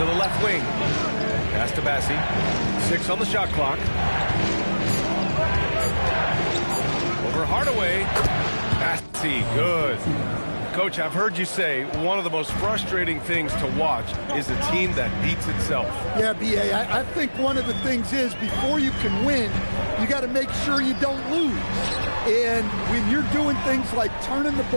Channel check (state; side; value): inverted; both; correlation -1.00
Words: the left wing. Pass to Bassey. 6 on the shot clock. Over Hardaway. Bassey, good. Coach, I've heard you say one of the most frustrating things to watch is a team that beats itself. Yeah, B.A., I think one of the things is before you can win, you got to make sure you don't lose. And when you're doing things like turning the